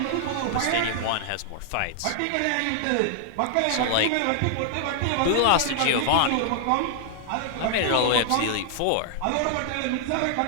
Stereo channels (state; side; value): different; both; correlation -0.01